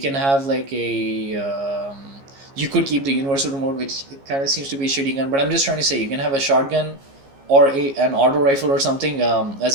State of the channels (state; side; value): late; left; 15 ms